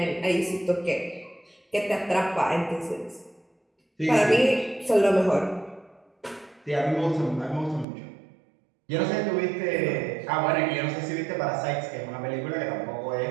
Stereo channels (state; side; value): drops out; left; at 7.9 s